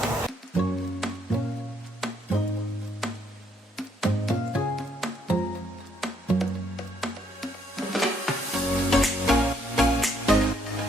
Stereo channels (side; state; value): both; normal; correlation 0.70